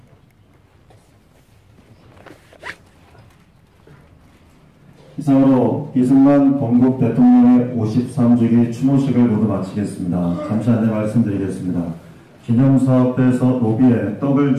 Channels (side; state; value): both; identical; correlation 1.00